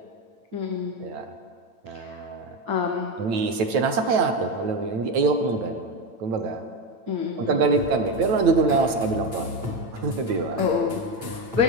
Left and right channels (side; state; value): left; late; 9.0 ms